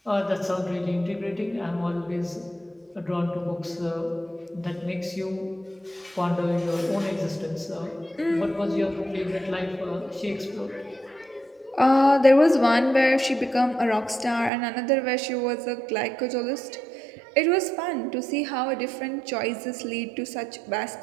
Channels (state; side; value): drops out; left; at 14.5 s